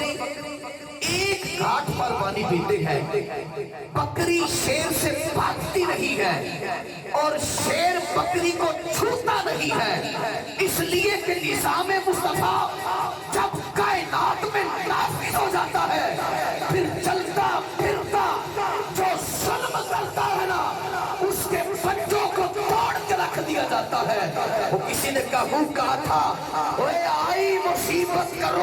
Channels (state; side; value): identical; both; correlation 1.00